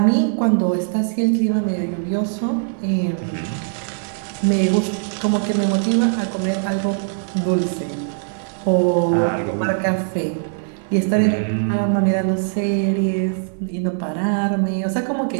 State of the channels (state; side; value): silent; left; 57 dB below the other